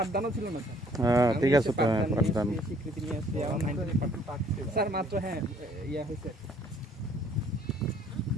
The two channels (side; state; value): both; normal; correlation 0.60